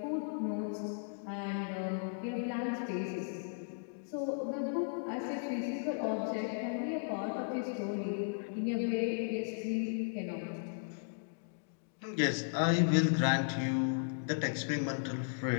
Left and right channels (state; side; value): silent; right; digital silence